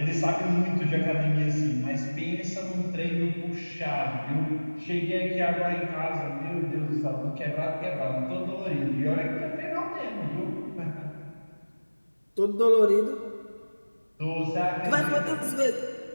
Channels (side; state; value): both; inverted; correlation -1.00